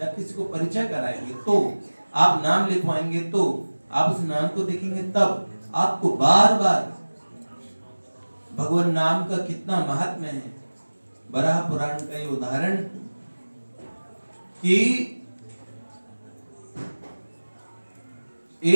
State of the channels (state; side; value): inverted; both; correlation -1.00